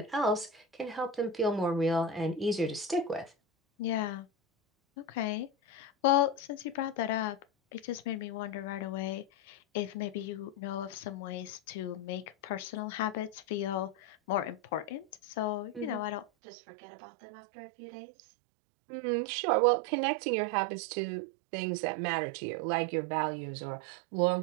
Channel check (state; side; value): drops out; left; at 16.2 s